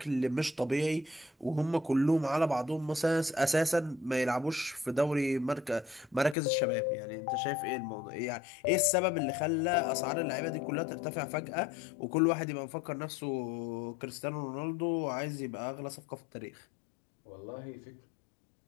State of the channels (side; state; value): right; drops out; at 6.4 s